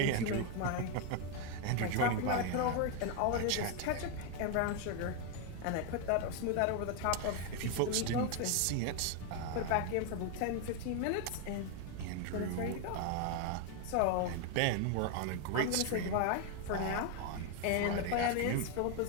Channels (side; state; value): both; different; correlation 0.01